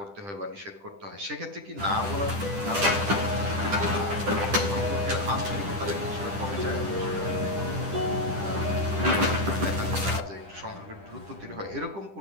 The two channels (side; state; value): left; late; 10 ms